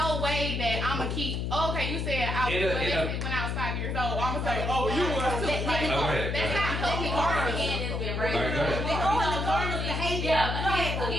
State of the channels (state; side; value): noise; left; hum, 1 dB below the sound